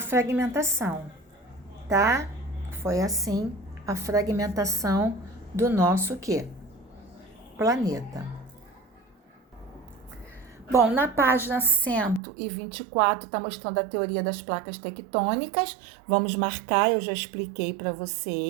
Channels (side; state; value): left; drops out; at 12.2 s